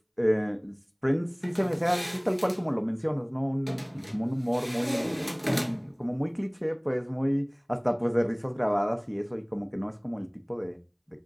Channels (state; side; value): identical; both; correlation 1.00